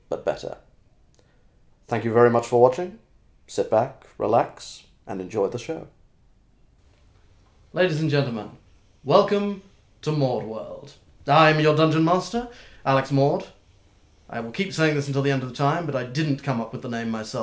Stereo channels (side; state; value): both; identical; correlation 1.00